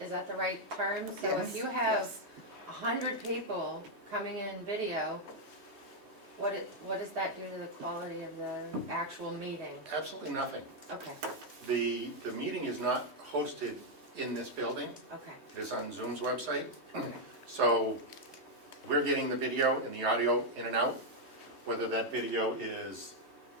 Is that the right term? So Yes, if you have yes. 100 people coming in video, what does that do to the quality of the actual meeting? Absolutely nothing. Okay, The meeting is not hosted in this building. okay, It is on Zoom's website. okay. So we're getting the video and the audio in and out, whether that video is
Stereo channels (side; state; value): left; late; 3.2 ms